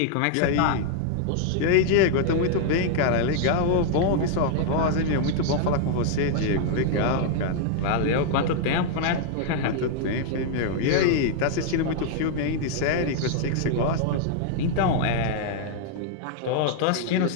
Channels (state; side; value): different; both; correlation -0.01